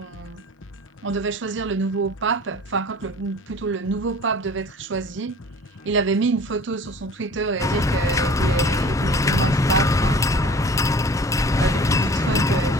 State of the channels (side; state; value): both; normal; correlation 0.45